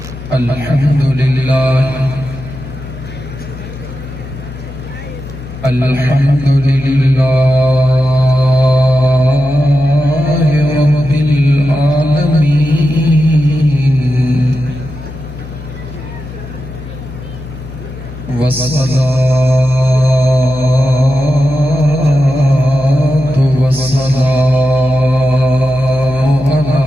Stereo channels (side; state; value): left; noise; hum, 13 dB below the sound